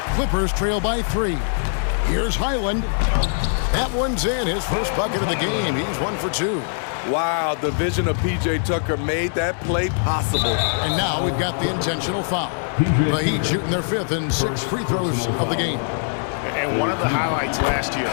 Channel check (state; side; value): silent; right; digital silence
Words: Clippers trail by 3. Here's Highland. That one's in, his first bucket of the game. He's 1 for 2. Wow, the vision of P.J. Tucker made that play possible. And now we've got the intentional foul. The Heat shooting their 5th and 6th free throws of the game. And one of the highlights last year